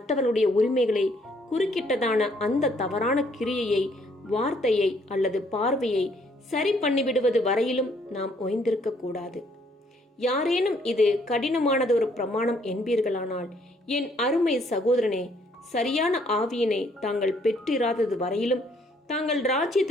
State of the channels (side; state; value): both; normal; correlation 0.66